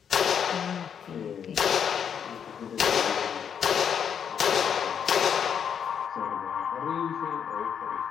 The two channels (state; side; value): quieter; right; 7.8 dB